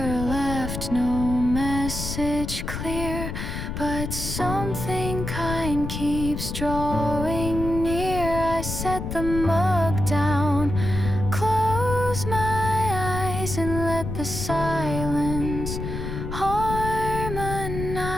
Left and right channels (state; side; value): noise; left; rumble, 5 dB below the sound